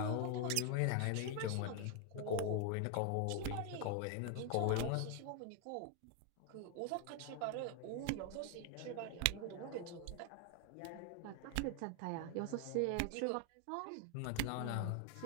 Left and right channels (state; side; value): different; both; correlation 0.00